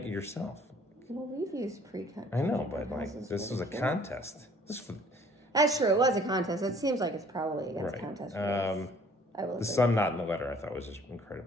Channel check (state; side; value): normal; both; correlation 0.56